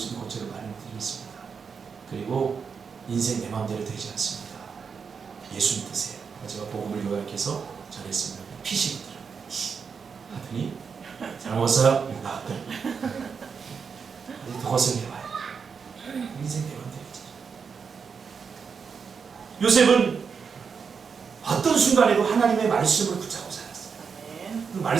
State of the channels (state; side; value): quieter; left; 6.0 dB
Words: 있는 곳을 마련해 드리겠습니다. 그리고 인생 내 마음대로 되지 않습니다. 예수 믿으세요. 제가 복음을 요약해서 전했습니다. 피시더라고요. 하더니 잘 먹었어요? 나왔더니 더 고생해봐요. 인생 내 마음대로 되지. 요셉은 어떤 순간에도 하나님의 말씀을 붙잡고 살았어요. 그